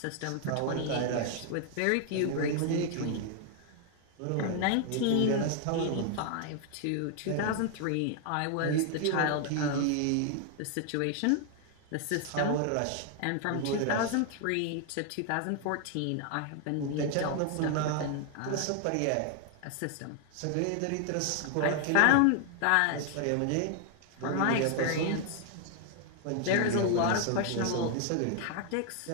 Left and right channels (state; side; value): different; both; correlation 0.00